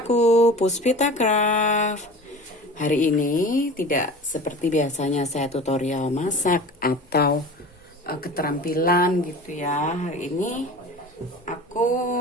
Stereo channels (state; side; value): normal; both; correlation 0.37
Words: Puspita Craft. Hari ini tidak seperti biasanya saya tutorial masak atau keterampilan gitu ya. Hari ini aku